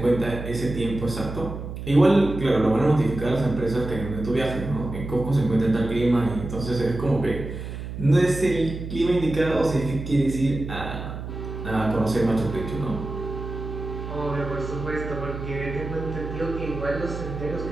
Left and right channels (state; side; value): noise; right; hum, 8 dB below the sound